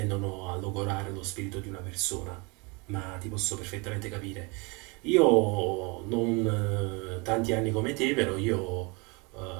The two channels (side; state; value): left; quieter; 29.2 dB